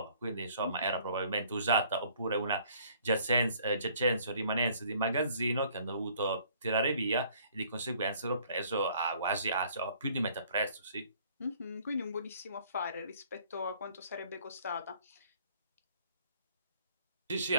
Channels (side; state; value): both; inverted; correlation -0.59